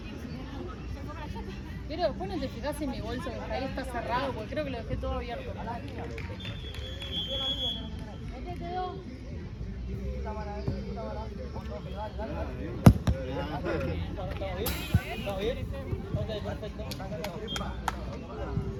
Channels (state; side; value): identical; both; correlation 1.00